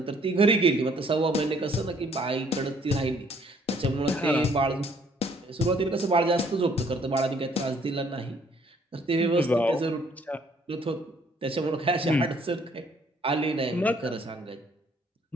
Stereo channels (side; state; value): both; normal; correlation 0.63